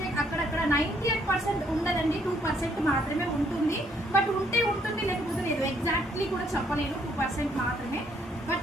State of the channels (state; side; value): normal; both; correlation 0.68